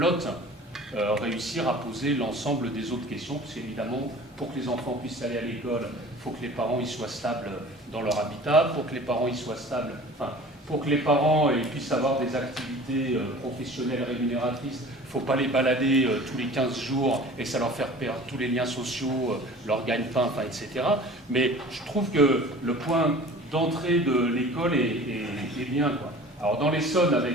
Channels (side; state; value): both; normal; correlation 0.43